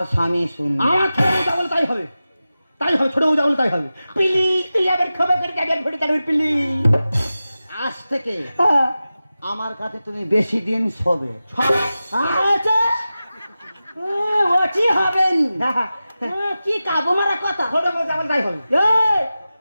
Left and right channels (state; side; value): inverted; both; correlation -0.94